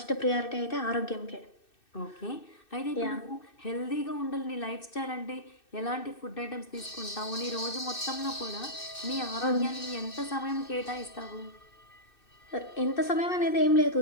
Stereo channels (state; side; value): late; right; 2.6 ms